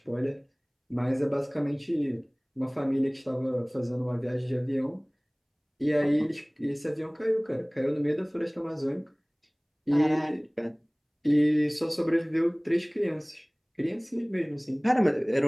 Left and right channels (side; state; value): both; identical; correlation 1.00